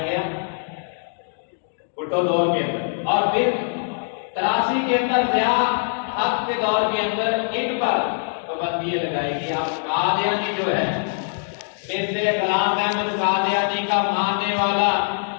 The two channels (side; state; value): right; silent; digital silence